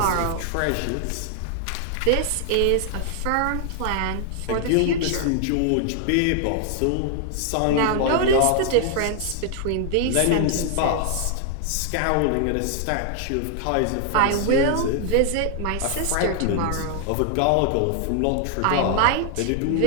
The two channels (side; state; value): both; different; correlation 0.00